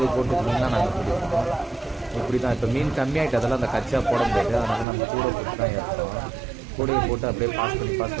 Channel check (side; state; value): left; drops out; at 4.9 s